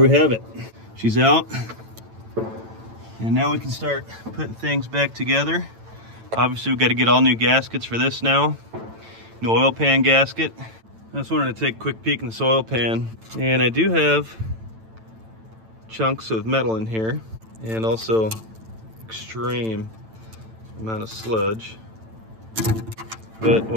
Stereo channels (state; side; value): late; left; 9.0 ms